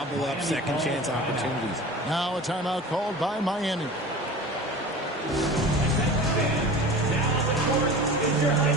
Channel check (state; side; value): normal; both; correlation 0.36